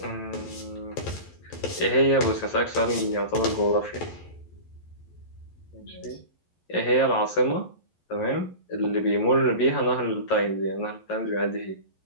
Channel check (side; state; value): right; late; 11 ms